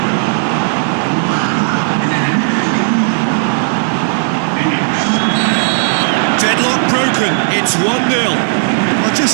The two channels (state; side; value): silent; left; 71 dB below the other